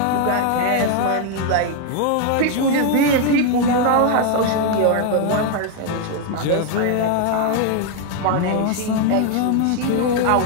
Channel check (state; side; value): different; both; correlation 0.01